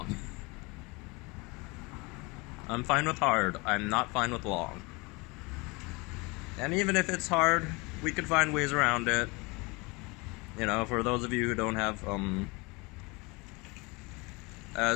I'm fine with hard, I'm not fine with long. And even if it's hard, we could find ways around it. You know, for those of you who don't have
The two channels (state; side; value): quieter; right; 26.6 dB